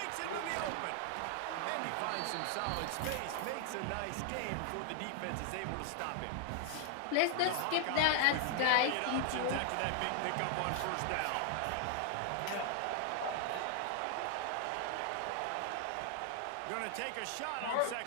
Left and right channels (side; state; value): both; different; correlation 0.00